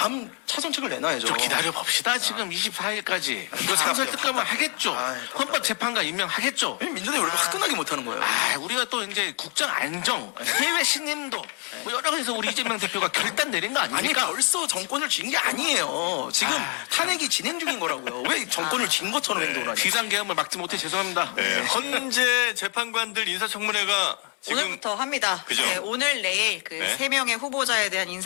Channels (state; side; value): quieter; right; 36.6 dB